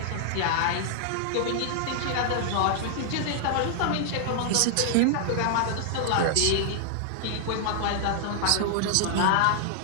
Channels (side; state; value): both; different; correlation -0.01